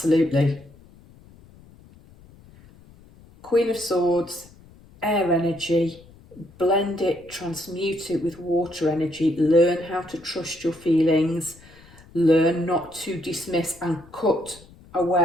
Queen of Swords, air energy, blend it, transmute it with water energy, learn how to trust your feelings, learn not to dismiss and cut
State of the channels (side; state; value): left; noise; rumble, 24 dB below the sound